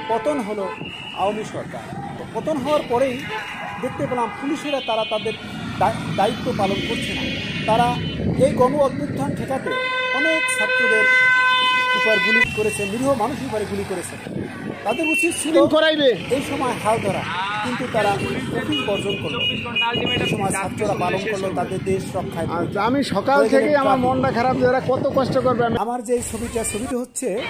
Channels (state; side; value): identical; both; correlation 1.00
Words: পতন হলো আওয়ামী সরকার। পতন হওয়ার পরেই দেখতে পেলাম পুলিশেরা তারা তাদের দায়িত্ব পালন করছে না। তারা এই গণ অভ্যুত্থান ঠেকাতে অনেক ছাত্রদের উপর গুলি করেছে, নিরীহ মানুষের উপরে গুলি করেছে। তাদের উচিত ছিল এই সময় হাল ধরা, কিন্তু তারা কঠিন বর্জন করলো। এই সময় ছাত্ররা পালন করলো তাদের দেশ রক্ষায়। আমি সকাল থেকে আমার মনটা খারাপ, যারা কত কষ্ট করবে। আমার যে ছবিটা হচ্ছে